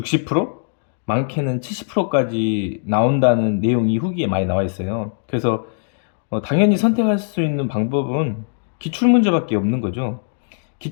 많게는 70%까지 나온다는 내용이 후기에 많이 나와 있어요. 그래서 당연히 선택할 수 있는 방법은 기출문제밖에 없는 거죠.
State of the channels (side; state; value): right; silent; 66 dB below the other